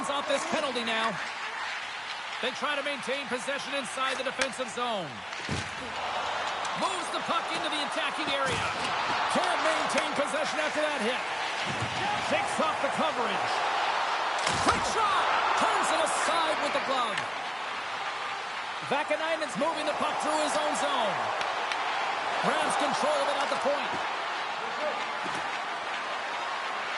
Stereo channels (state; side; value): identical; both; correlation 1.00